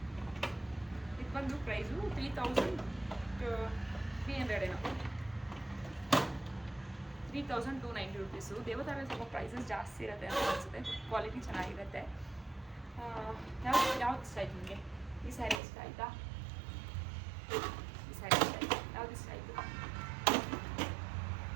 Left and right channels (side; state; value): left; drops out; at 15.6 s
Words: ಇದು ಬಂದು ಪ್ರೈಸು 3,300 ಏನೋ, 3,290 ರೂಪೀಸು. ದೇವತಾರಲ್ಲಿ ಸ್ವಲ್ಪ ಪ್ರೈಸಸ್ ಜಾಸ್ತಿ ಇರುತ್ತೆ ಅಂತ ಅನಿಸುತ್ತೆ. ಕ್ವಾಲಿಟಿ ಚೆನ್ನಾಗಿರುತ್ತೆ. ಯಾವ್ದು ಇಷ್ಟ ಆಯ್ತು ನಿಮಗೆ? ಈ ಸ್ಯಾರಿ ಇಷ್ಟ ಆಯಿತಾ? ಈ ಸ್ಯಾರಿ ಇಷ್ಟ ಆಯಿತು? ಯಾವ್ದು ಇಷ್ಟ ಆಯಿತು?